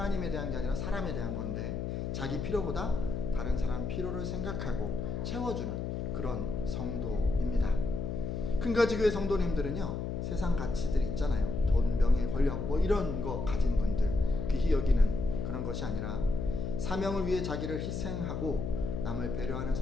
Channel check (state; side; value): noise; left; hum, 3 dB below the sound